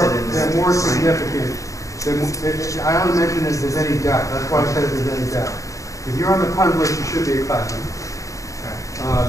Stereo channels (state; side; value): late; right; 0.16 ms